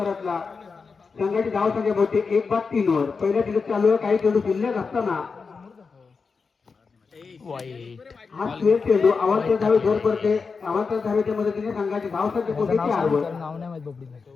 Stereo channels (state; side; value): quieter; right; 4.9 dB